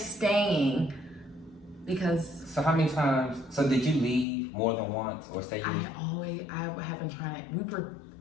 because. So how many times, did you leave more than once or say you? I have been trying to, we were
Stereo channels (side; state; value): right; drops out; at 4.2 s